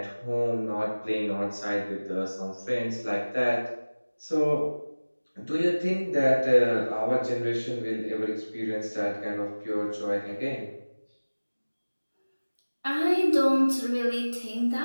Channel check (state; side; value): inverted; both; correlation -1.00